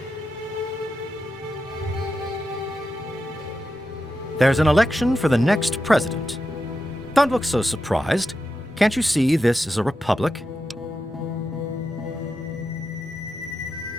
There's an election for the next president. Don't look so surprised. Can't you see this is a republic?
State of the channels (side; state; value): both; normal; correlation 0.88